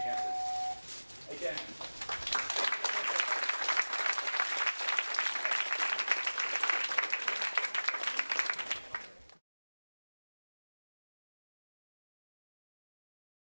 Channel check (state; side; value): inverted; both; correlation -1.00